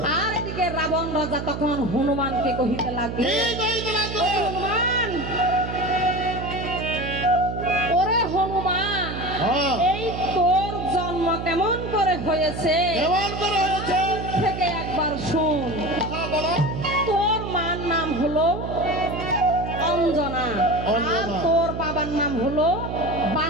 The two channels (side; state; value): right; noise; hum, 6 dB below the sound